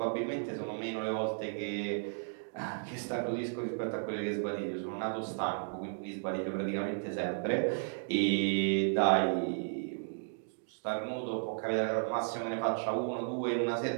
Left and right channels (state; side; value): silent; left; digital silence